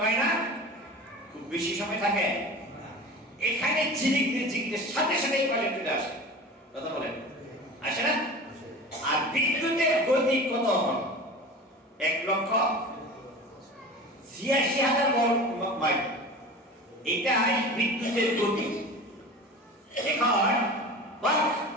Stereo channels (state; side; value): normal; both; correlation 0.35